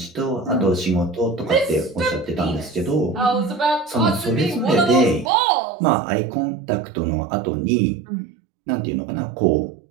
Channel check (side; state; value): left; drops out; at 5.3 s